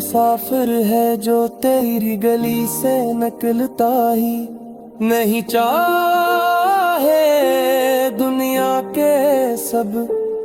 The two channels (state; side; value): identical; both; correlation 1.00